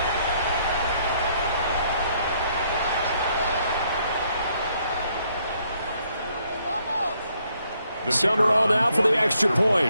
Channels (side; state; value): both; inverted; correlation -0.71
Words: Summerall now for the extra